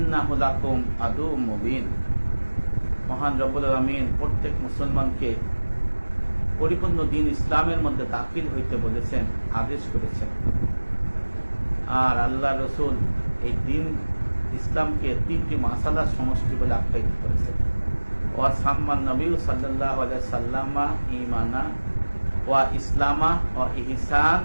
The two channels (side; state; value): both; inverted; correlation -1.00